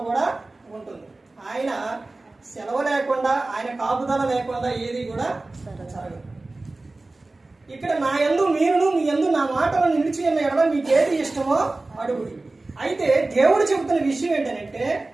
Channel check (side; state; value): left; quieter; 3.1 dB